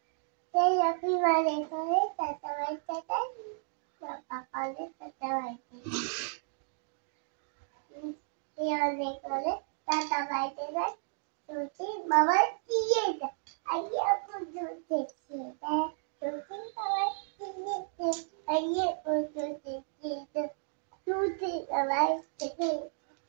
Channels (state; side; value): silent; left; digital silence